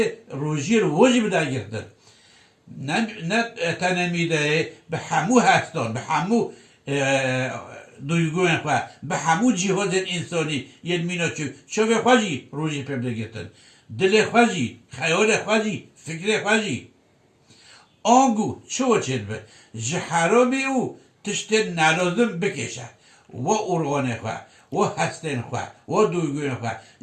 روژی رو واجب بده گرتن نه تنمیده به همو هستان به همو دویگون خواه به همو جهاز انسانی یه مینا چوه خواهی روژی پیدا گرتن دل خواهی خیال خواهی فکر خواهی آنگو چو چید به جه حرامی او تشت نلازم بکشه و ارغانه خواه و هستن خواه و دوگوین خواه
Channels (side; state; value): both; identical; correlation 1.00